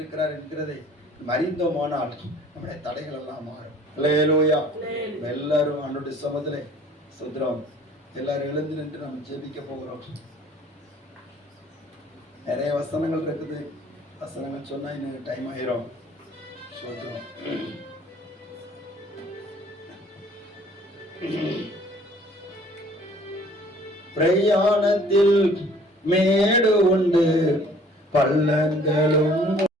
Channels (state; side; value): normal; both; correlation 0.54